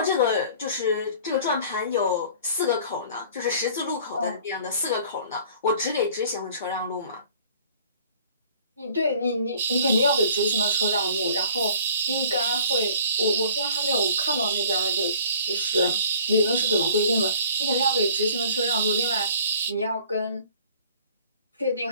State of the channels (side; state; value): both; inverted; correlation -0.51